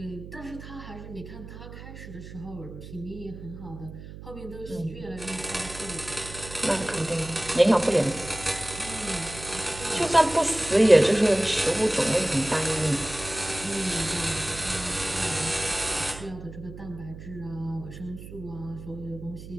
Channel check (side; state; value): right; noise; hum, 13 dB below the sound